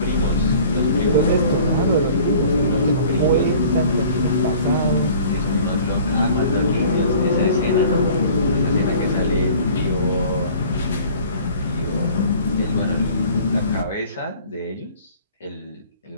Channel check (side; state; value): both; inverted; correlation -0.48